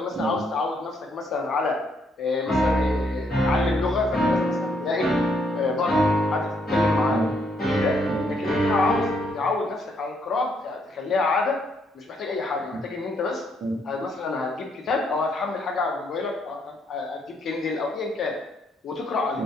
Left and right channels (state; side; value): normal; both; correlation 0.73